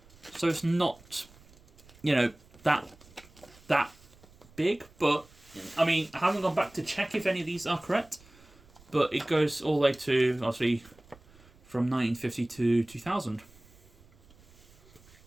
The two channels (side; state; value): right; noise; rumble, 26 dB below the sound